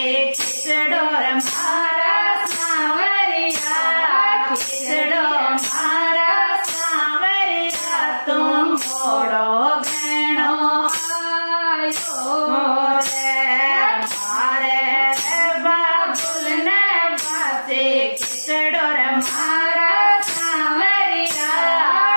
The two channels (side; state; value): both; inverted; correlation -1.00